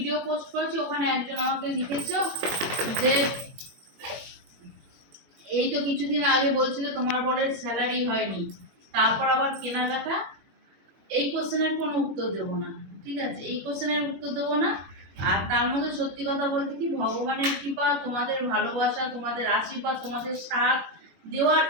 পোস্ট করেছি। ওখানে একজন আমাকে লিখেছো যে এই তো কিছুদিন আগে বলছিলে তোমার বরের স্যালারি হয়নি, তারপর আবার কেনাকাটা। এই কোশ্চেনের কোনো উত্তর দেবো না, ঠিক আছে, এই কোশ্চেনের উত্তর দেবো না। আর তার মধ্যে সত্যি কথা বলতে কি, ভগবানের কৃপা, তোমাদের ভালোবাসা, তোমাদের আশীর্বাদ, তোমাদের সাথ দেওয়ার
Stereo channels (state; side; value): late; left; 21 ms